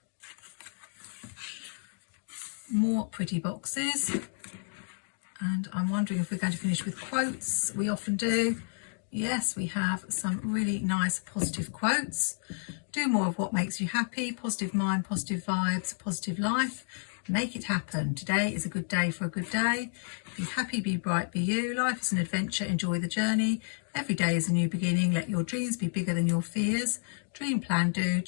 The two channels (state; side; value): silent; right; digital silence